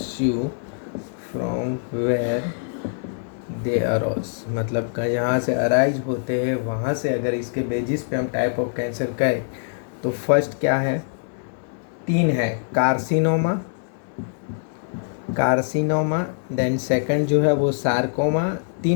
from where they arise, मतलब यहाँ से अराइज होते हैं वहाँ से अगर इसके बेसिस पे हम टाइप ऑफ कैंसर कहें तो फर्स्ट क्या है, 3 है, कार्सिनोमा, देन सेकंड जो है वो सार्कोमा,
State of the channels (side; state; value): right; silent; digital silence